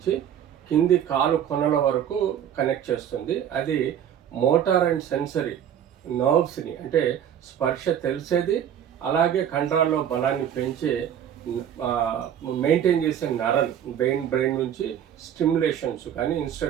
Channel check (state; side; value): quieter; left; 9.6 dB